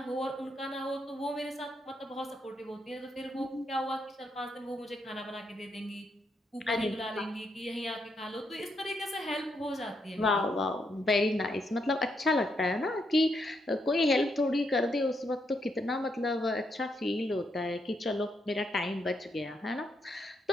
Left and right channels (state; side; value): normal; both; correlation 0.78